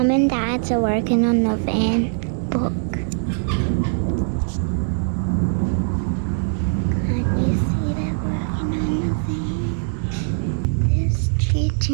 and dads are working on the van book. To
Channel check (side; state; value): left; silent; digital silence